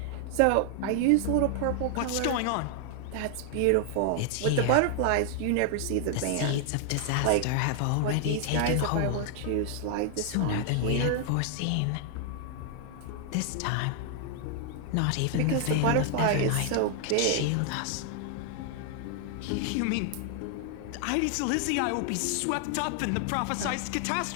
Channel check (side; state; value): both; different; correlation 0.00